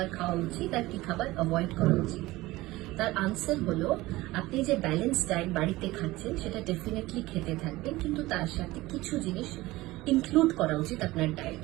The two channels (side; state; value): left; quieter; 18.9 dB